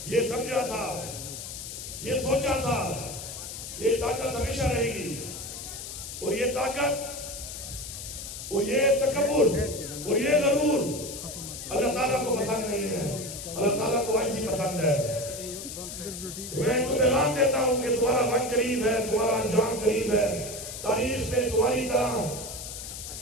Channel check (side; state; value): left; noise; hiss, 9 dB below the sound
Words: یہ سمجھا تھا یہ سوچا تھا کہ یہ طاقت ہمیشہ رہے گی اور یہ طاقت اور یہ تکبر اور یہ غرور اللہ تعالیٰ کو پسند نہیں ہے اللہ تعالیٰ کو عاجزی پسند ہے میں ان کو پیغام دیتا ہوں کہ تمہارا وقت قریب ہے تمہارا انجام قریب ہے تاریخ میں تمہاری طرح